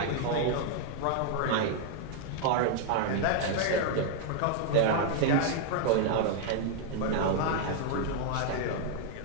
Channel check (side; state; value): both; different; correlation 0.00